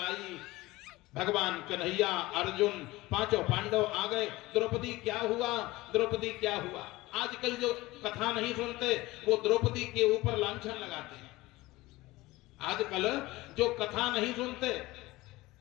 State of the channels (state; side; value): quieter; right; 19.5 dB